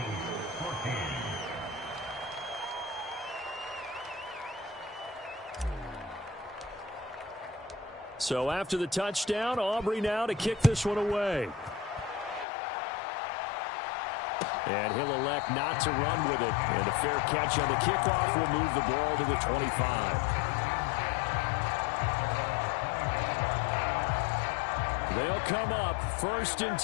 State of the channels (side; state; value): right; drops out; at 12.5 s